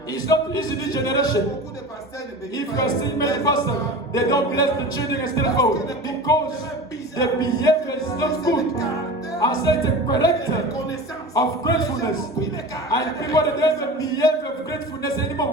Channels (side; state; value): both; normal; correlation 0.33